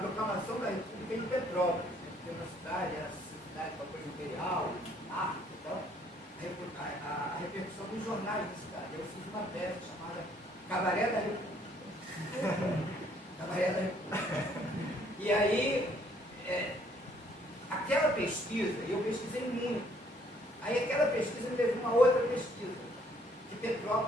da República em Petrópolis. Tem uma cidade, a cidade com a coisa imperial, a repercussão dos jornais da cidade. Eu fiz uma peça chamada Cabaré da República. Cabaré da República. E aí, aquela pesquisa, eu pesquisei muito. Aí aquela pesquisa me levou a uma outra pesquisa, que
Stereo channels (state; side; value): normal; both; correlation 0.64